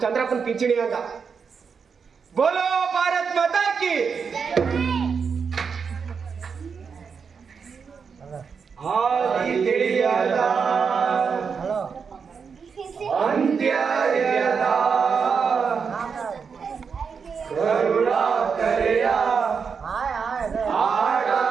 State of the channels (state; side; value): quieter; left; 5.9 dB